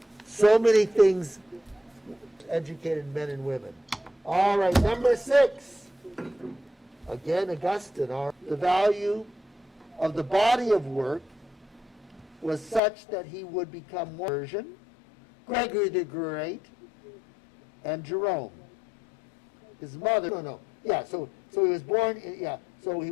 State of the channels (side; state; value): right; drops out; at 12.8 s